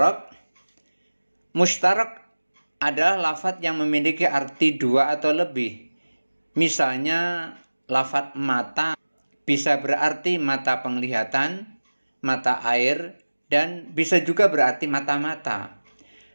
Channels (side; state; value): both; inverted; correlation -1.00